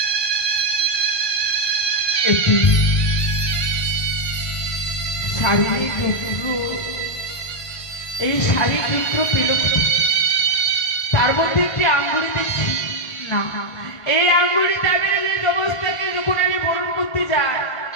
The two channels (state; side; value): late; right; 1.4 ms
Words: একটি শাড়ির টুকরো, এই শাড়ির টুকরো পেল, তার মধ্যে একটি আঙ্গুলি দেখছি। না, এই আঙ্গুলিটা আমি নিজের জবস্থাকে যখন আমি বরণ করতে যাই,